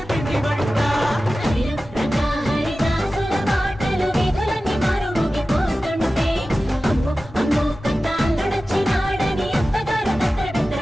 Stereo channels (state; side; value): normal; both; correlation 0.95